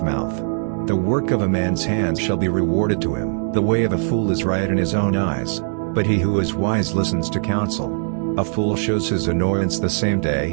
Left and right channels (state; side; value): silent; left; digital silence